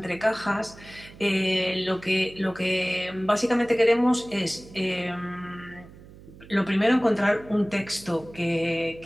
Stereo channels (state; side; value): noise; right; hum, 20 dB below the sound